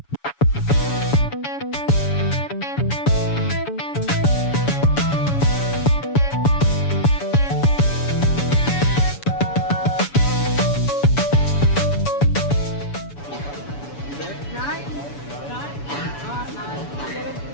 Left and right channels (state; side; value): late; right; 7.0 ms